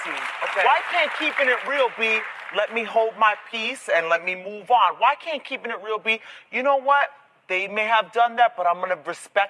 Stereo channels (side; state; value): both; identical; correlation 1.00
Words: Okay. Why can't keeping it real be let me hold my peace and let me move on? Why can't keeping it real be, you know what? They may have done that, but I'm going to